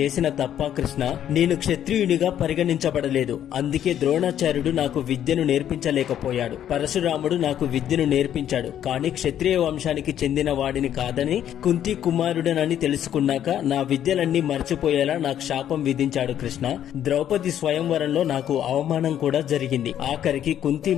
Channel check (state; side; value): quieter; right; 10.5 dB